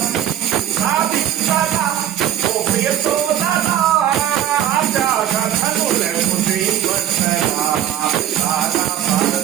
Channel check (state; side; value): quieter; left; 10.8 dB